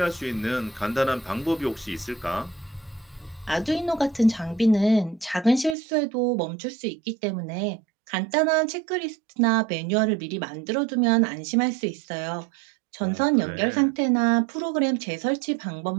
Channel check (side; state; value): left; drops out; at 5.8 s